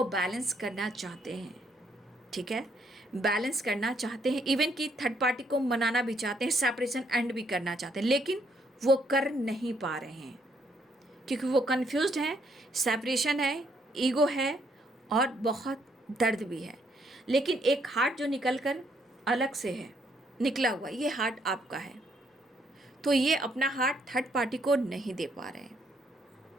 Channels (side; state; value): both; normal; correlation 0.71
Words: बैलेंस करना चाहते हैं, ठीक है, बैलेंस करना चाहते हैं, इवन कि थर्ड पार्टी को मनाना भी चाहते हैं, सेपरेशन एंड भी करना चाहते हैं, लेकिन वो कर नहीं पा रहे हैं क्योंकि वो कंफ्यूज्ड हैं, सेपरेशन है, ईगो है और बहुत दर्द भी है। लेकिन एक हार्ट जो निकल कर अलग से है, निकला हुआ, ये हार्ट आपका है, तो ये अपना हार्ट थर्ड पार्टी को नहीं दे पा रहे हैं,